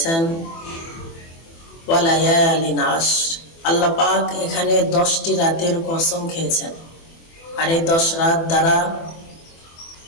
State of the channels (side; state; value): right; late; 24 ms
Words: ওয়া লায়ালিন আশর। আল্লাহ পাক এখানে 10টি রাতের কসম খেয়েছেন। আর এই 10 রাত দ্বারা